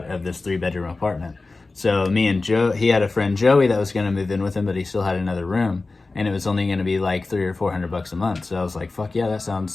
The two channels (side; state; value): right; quieter; 3.5 dB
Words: of this 3-bedroom apartment. So me and Joe, he had a friend Joey that was going to move in with him, but he still had another room, and it was only going to be like $300 or $400 a month. So I was like, fuck yeah, that